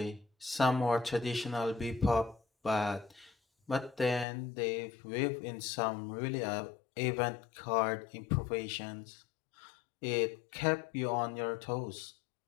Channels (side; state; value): right; drops out; at 4.2 s